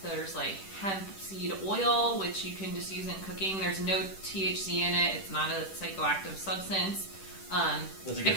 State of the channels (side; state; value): right; late; 10 ms